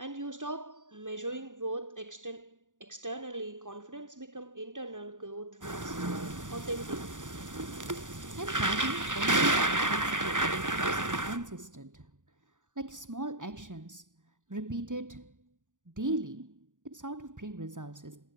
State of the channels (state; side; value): late; left; 0.87 ms